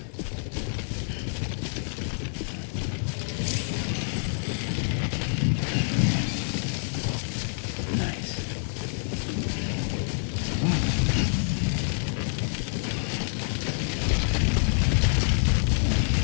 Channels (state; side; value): silent; right; digital silence